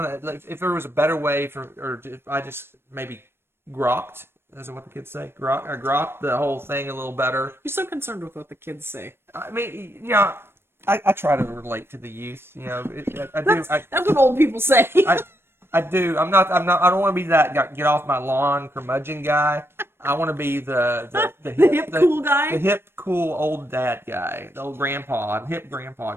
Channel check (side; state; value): left; late; 0.12 ms